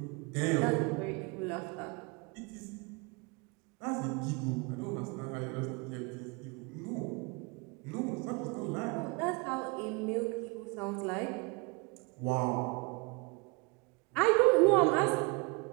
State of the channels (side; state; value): left; quieter; 29.6 dB